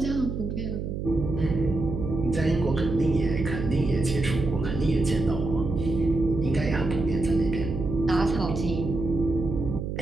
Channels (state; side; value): noise; right; hum, 4 dB below the sound